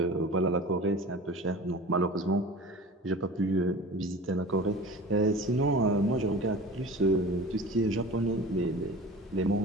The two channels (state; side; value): normal; both; correlation 0.38